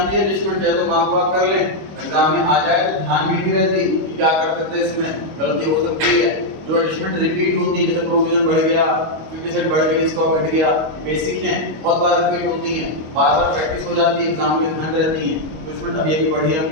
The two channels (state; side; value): late; left; 25 ms